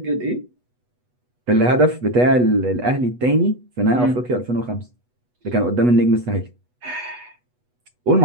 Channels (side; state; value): left; late; 8.2 ms